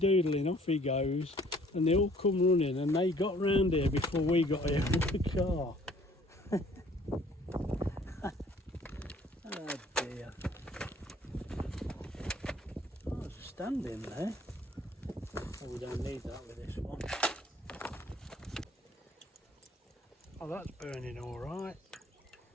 off he goes, and they all come running, and they got round here before we got here with the car. Oh dear. Oh, there's a stand in there. Oh, we don't need that with this one. Oh, that's burning all right.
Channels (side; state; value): both; normal; correlation 0.57